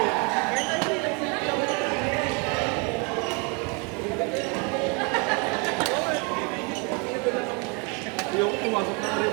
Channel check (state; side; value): quieter; left; 31.7 dB